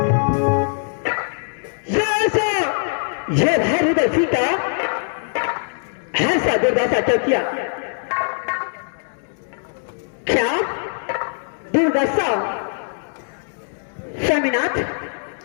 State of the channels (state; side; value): silent; right; digital silence